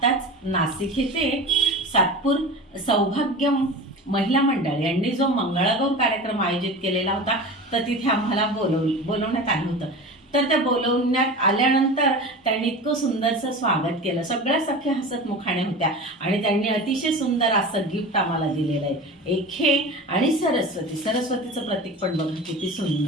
नाशिक येथे सातपूर सौभाग्य महिला मंडळ यांनी जो मंगळागौर कार्यक्रम आयोजित केलेला होता, तर तिथे आम्हाला बोलवण्यात आलं होतं. तर त्या बोलवण्यात आल्यानंतर त्यांनी इतकं सुंदरचं स्वागत केलं. सगळ्या सख्या हसत मुखाने होत्या आणि त्यांनी अतिशय सुंदर असं गिफ्ट आम्हाला दिलेलं आहे. एक हे आणि सरस्वतीचं प्रतीक पण बघा किती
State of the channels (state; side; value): normal; both; correlation 0.33